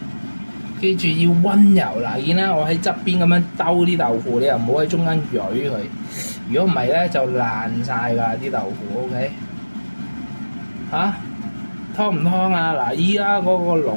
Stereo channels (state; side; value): inverted; both; correlation -1.00